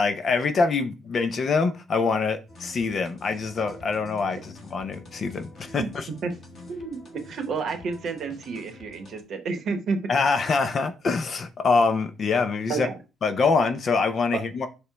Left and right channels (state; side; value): quieter; right; 3.1 dB